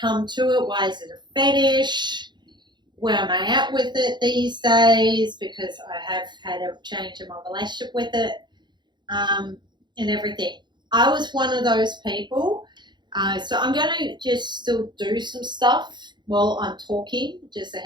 to it? Why is it a fetish? Where am I at with it these days? Because I have had a change in my relationship with it, and everything. I was one of those people. So I'm going to just still do some stuff while I'm talking, just a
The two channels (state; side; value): late; left; 0.22 ms